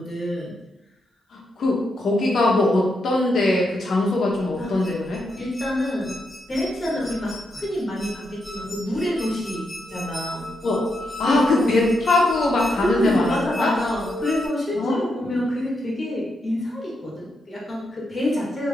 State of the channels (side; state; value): both; normal; correlation 0.82